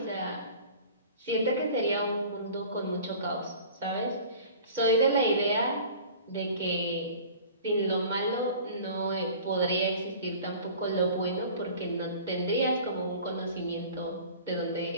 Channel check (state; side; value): inverted; both; correlation -0.43